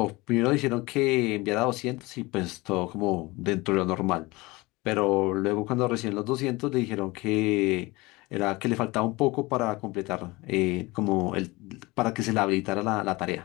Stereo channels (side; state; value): right; quieter; 22.5 dB